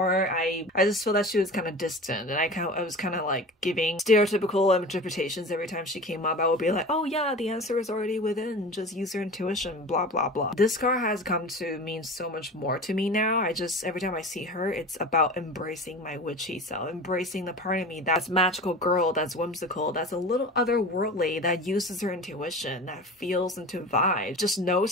I just feel that she was kind of distant, and I was kind of like giving stereotypical interpretations every time she came up. I would be like, oh yeah, the answer is already within, just use your intuition, blah blah blah. This card has come to mean so much more to me now. Every time I see her, it's about embracing my witchy self, embracing the part of me that's magical girl, that's whimsical, that's a little otherworldly, that uses her intuition, that feels into vibes, just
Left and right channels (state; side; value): normal; both; correlation 0.34